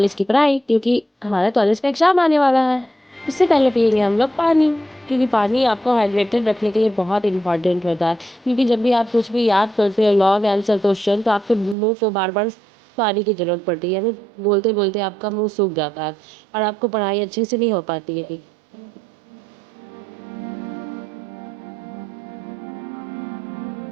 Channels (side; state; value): left; drops out; at 11.8 s